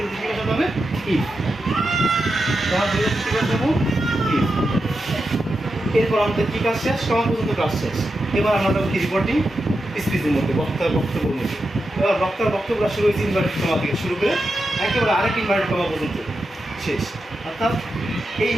কি বসাতে হবে? ইফ। কমার পরিবর্তে কি বসাবো? ইফ। এরপর আমাদের কি কাজ শেষ? কমা পর্যন্ত কাজ শেষ। এবার আমরা যাবো কি? রিপোর্টিং স্পিচের মধ্যে, বক্তার বক্তব্যের মধ্যে। এবার বক্তার বক্তব্যটা শুরু হয়েছে ইনভার্টেড কমা থেকে শুরু করে একেবারে আরেক ইনভার্টেড কমা পর্যন্ত শেষ, অর্থাৎ এই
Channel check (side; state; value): both; normal; correlation 0.88